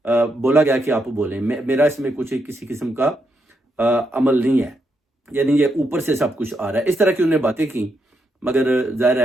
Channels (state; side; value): normal; both; correlation 0.80